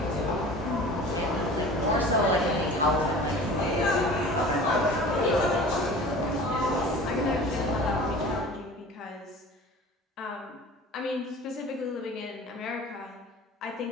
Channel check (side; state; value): both; normal; correlation 0.41